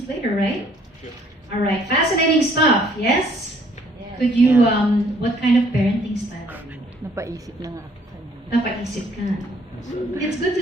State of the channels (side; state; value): both; normal; correlation 0.62